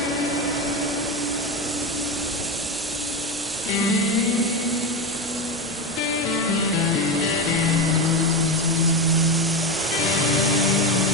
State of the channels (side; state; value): both; normal; correlation 0.17